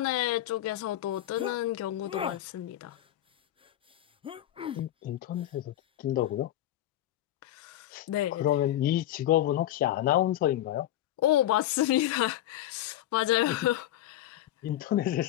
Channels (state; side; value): quieter; right; 13.3 dB